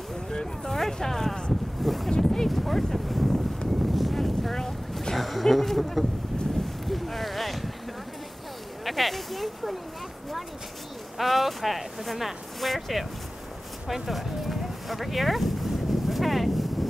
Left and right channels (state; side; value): normal; both; correlation 0.98